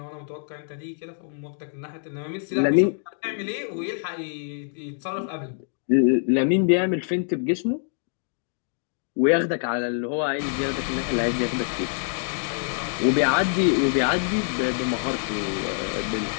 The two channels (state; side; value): silent; right; digital silence